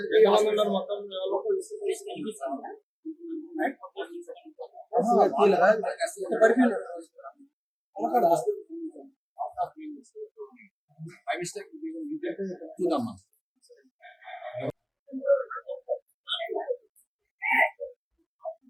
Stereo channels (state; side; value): identical; both; correlation 1.00